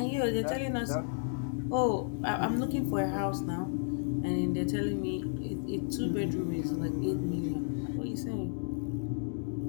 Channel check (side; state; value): right; silent; digital silence